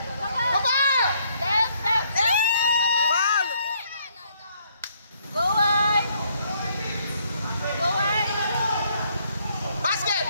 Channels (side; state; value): both; inverted; correlation -0.69